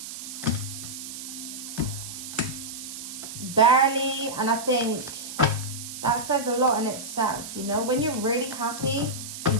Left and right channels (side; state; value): right; noise; hiss, 9 dB below the sound